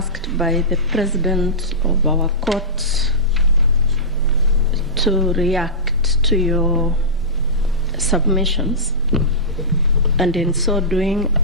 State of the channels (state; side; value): normal; both; correlation -0.16